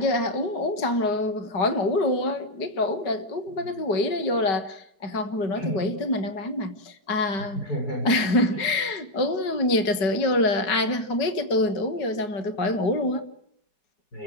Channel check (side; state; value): right; late; 5.2 ms